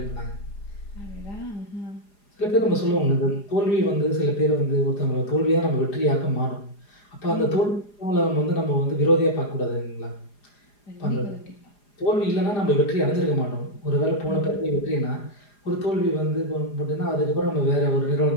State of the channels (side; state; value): right; late; 4.9 ms